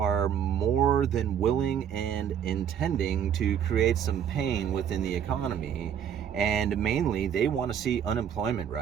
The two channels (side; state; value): left; quieter; 8.7 dB